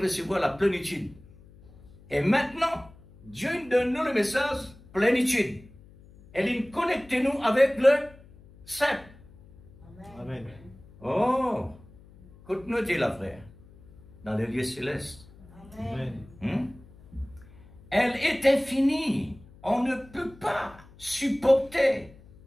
recevoir la plénitude. Et maintenant, Dieu nous donne nous le message plénitude. Et il connecte nous avec le Saint. Amen. Oh, écoute-nous, la frère, dans les lieux célestes. Amen. Elle est infinie. On ne peut pas supporter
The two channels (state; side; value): noise; left; hum, 23 dB below the sound